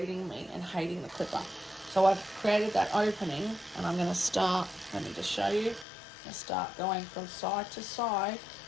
me and hating the clipper. So I've created that opening, and I'm going to start, let me just show you, I start going from side to side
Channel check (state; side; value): drops out; right; at 5.9 s